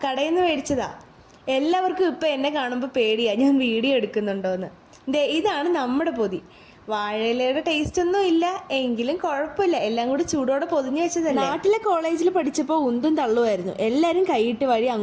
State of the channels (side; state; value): both; identical; correlation 1.00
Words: കടയിൽ നിന്ന് മേടിച്ചതാ. എല്ലാവർക്കും ഇപ്പം എന്നെ കാണുമ്പോൾ പേടിയാ ഞാൻ വീഡിയോ എടുക്കുന്നുണ്ടോയെന്ന്. ദേ ഇതാണ് നമ്മുടെ പൊതി. വാഴയിലയുടെ ടേസ്റ്റ് ഒന്നും ഇല്ല, എങ്കിലും കുഴപ്പമില്ല. എല്ലാം കൂടി ചൂടോടെ പൊതിഞ്ഞു വെച്ചതല്ലേ. നാട്ടിലെ കോളേജിൽ പഠിച്ചപ്പോൾ ഉന്തും തള്ളുമായിരുന്നു. എല്ലാവരും കൈയിട്ട് വഴി